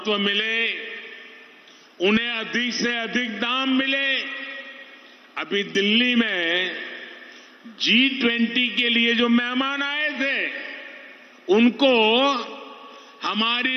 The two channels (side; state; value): both; identical; correlation 1.00